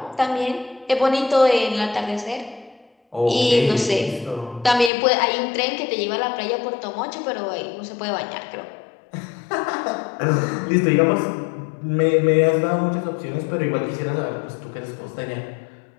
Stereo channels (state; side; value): drops out; right; at 4.9 s